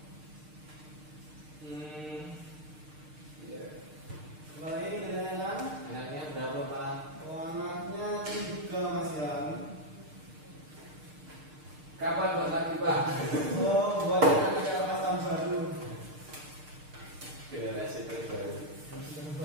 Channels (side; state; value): left; late; 6.6 ms